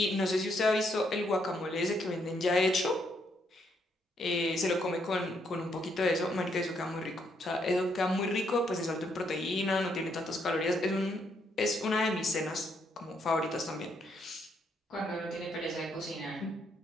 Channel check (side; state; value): both; normal; correlation 0.74